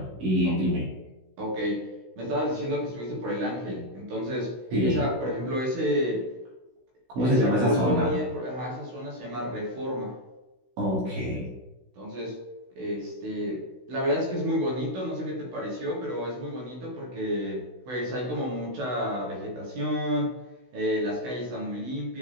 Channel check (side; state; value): left; late; 16 ms